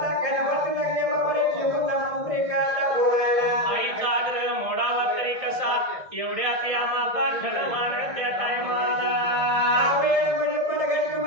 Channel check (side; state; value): left; late; 1.6 ms